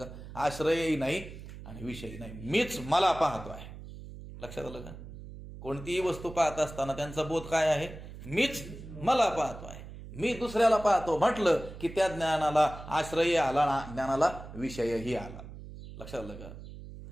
आश्रयही नाही आणि विषयही नाही, मीच मला पाहतो आहे. लक्षात आलं का? कोणतीही वस्तू पाहत असताना त्यांचा बोध काय आहे? मीच मला पाहतो आहे. मी दुसऱ्याला पाहतो म्हटलं की त्या ज्ञानाला आश्रयही आला, ज्ञानाला विषयही आला. लक्षात आलं का?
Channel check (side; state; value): right; noise; hum, 13 dB below the sound